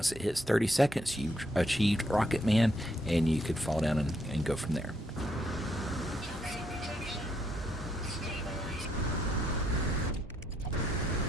it hits 30 seconds, you've achieved Rocketman, and you could fall down and go from there.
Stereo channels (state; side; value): normal; both; correlation 0.75